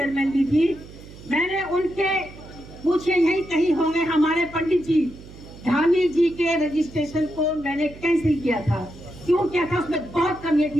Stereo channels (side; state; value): right; noise; hum, 18 dB below the sound